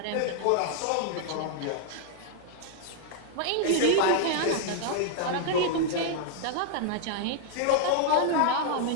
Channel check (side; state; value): both; different; correlation -0.01